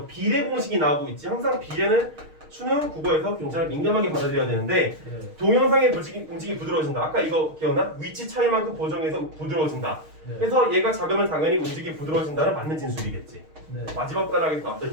비례 공식이 나오고 있지. 항상 비례는 수능 국어에서 굉장히 민감하게 받아들여야 되는데 네. 동영상의 움직임이 부드러워진다. 아까 이거 기억나? 위치 차이만큼 보정해서 부드러워진다. 네. 그래서 얘가 작으면 당연히 움직임이 부드러워진다는 맞는 진술이겠지. 네. 마지막 단락에서 나왔던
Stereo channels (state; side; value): late; left; 6.4 ms